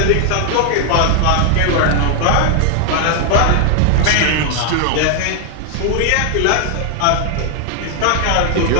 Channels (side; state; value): both; different; correlation 0.00